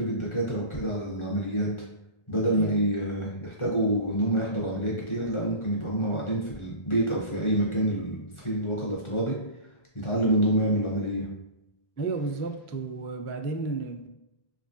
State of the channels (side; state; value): right; late; 1.4 ms